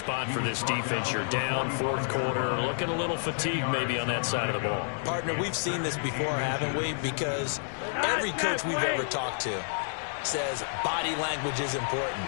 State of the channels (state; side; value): silent; right; 58 dB below the other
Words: for this defense. You're down 4th quarter, looking a little fatigued maybe on that side of the ball. Partner, we've seen this before, haven't we? Because every coach we've ever talked to says body language is important.